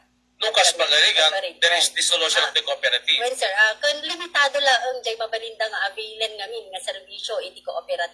Lucas Pagarigan, there is dissolution of the cooperative. Well, sir, kung limitado lang ang jay mabalinda nga availan ngamin nga serbisyo iti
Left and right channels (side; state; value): both; identical; correlation 1.00